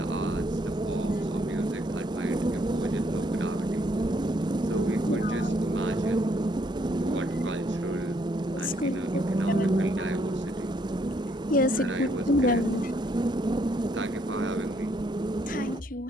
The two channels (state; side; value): normal; both; correlation 0.70